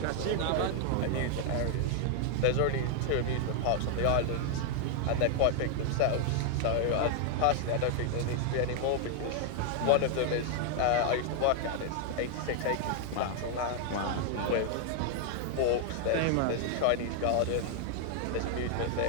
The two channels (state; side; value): different; both; correlation 0.00